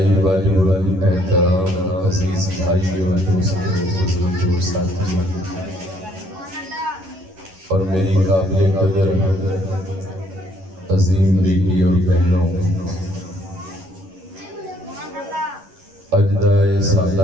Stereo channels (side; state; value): left; late; 11 ms